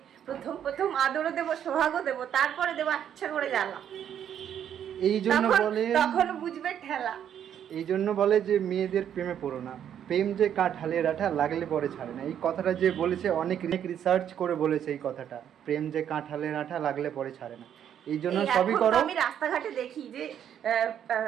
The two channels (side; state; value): left; quieter; 9.5 dB